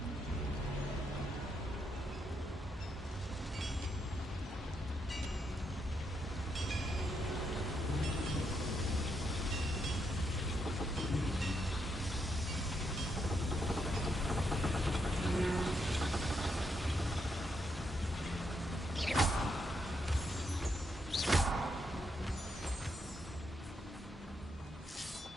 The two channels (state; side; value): normal; both; correlation 0.79